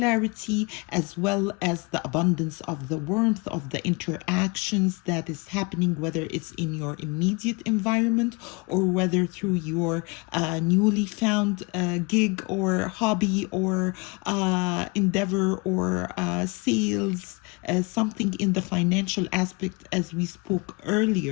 as well as the abundance of the warmth of the interactions that is happening, whether it's in your immediate environment or whether through your newly found gig or hobby or endeavor or sales, something in the financial aspect as we spoke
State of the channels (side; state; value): right; quieter; 28.6 dB